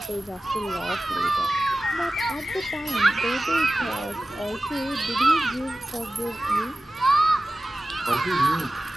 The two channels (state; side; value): normal; both; correlation 0.96